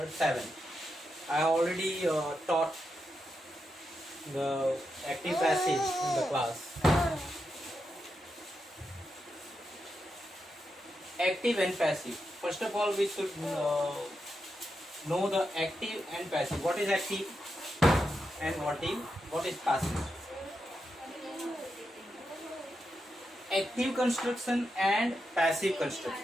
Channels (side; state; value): both; normal; correlation 0.86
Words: 7. I already taught the active passive in the class. Active and passive. First of all, we should know the active and passive. What is active and what is passive? Active construction and passive